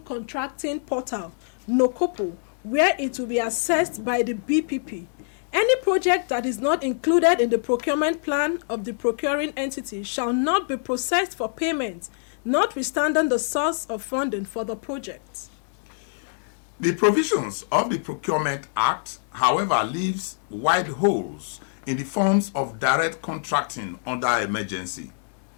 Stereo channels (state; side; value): silent; right; digital silence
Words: Portal, NOCOPO, where it will be assessed by the BPP. Any project that is not included in the procurement plan of the procuring entity shall not be processed for payment, notwithstanding the source of funding for the project. The provisions of the Procurement Act, however, leaves wide holes in the forms of direct contracting under emergency.